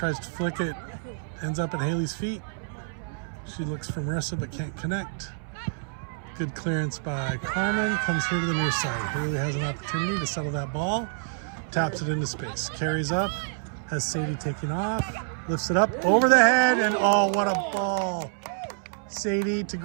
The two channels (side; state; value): left; silent; 60 dB below the other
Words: to flick it, ends up at Haley's feet. She looks for Marissa but can't connect. Good clearance by Carmen, comes here to the near side. Haley has an opportunity to settle that ball, taps it into space, carries up, has Sadie taking off, lifts it up over the head, and oh, what a ball. Sadie to